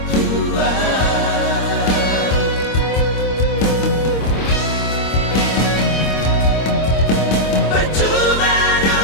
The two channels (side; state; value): right; late; 26 ms